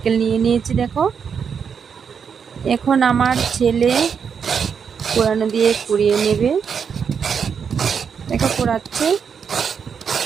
নিয়ে নিয়েছি দেখো। এখন আমার ছেলে কোরানো দিয়ে কুড়িয়ে নেবে। দেখো কোরাচ্ছে।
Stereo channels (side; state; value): left; quieter; 6.8 dB